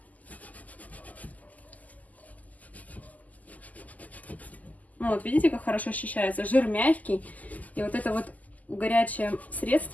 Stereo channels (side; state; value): right; late; 0.078 ms